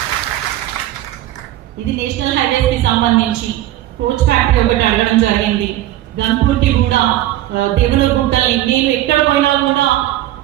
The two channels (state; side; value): quieter; left; 14.3 dB